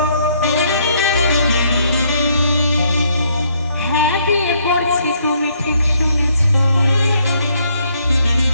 হ্যাঁ বিয়ে করছি, তুমি ঠিক শুনেছ।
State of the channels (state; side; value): inverted; both; correlation -0.69